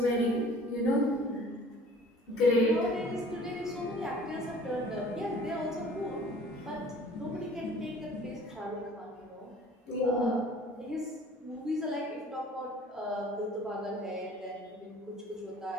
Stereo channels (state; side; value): normal; both; correlation 0.50